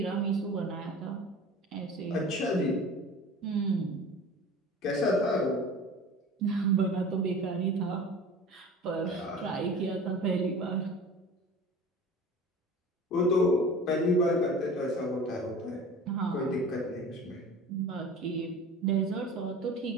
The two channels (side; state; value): both; normal; correlation 0.39